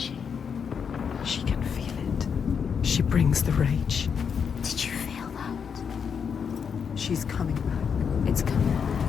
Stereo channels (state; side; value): quieter; right; 6.7 dB